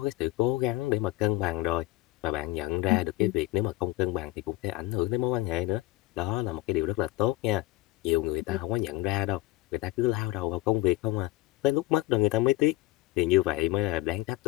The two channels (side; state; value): right; quieter; 18.2 dB